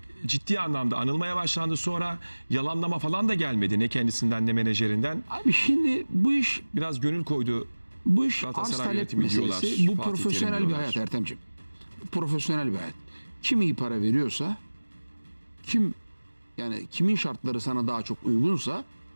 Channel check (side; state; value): both; inverted; correlation -1.00